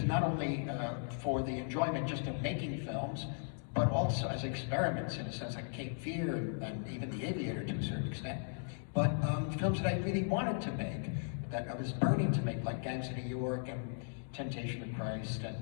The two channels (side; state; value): right; silent; digital silence